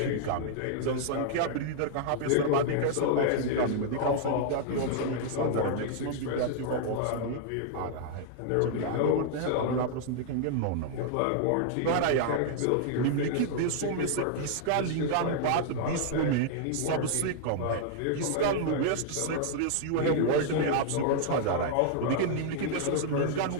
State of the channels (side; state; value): both; different; correlation -0.01